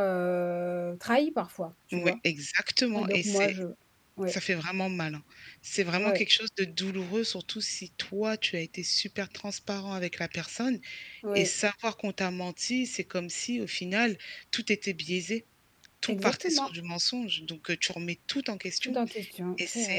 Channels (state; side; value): identical; both; correlation 1.00